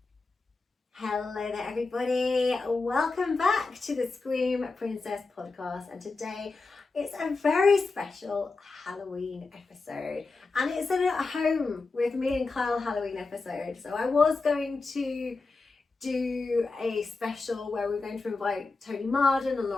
Hello there, everybody. Welcome back to the Scream Princess podcast. And today it's a very special Halloween episode. And it's an at home with me and Kyle Halloween episode. So I was going to do a special where we're going to invite Tony Marden and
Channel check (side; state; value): right; quieter; 3.9 dB